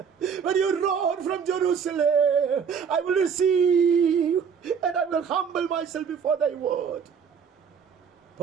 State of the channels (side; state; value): left; quieter; 6.7 dB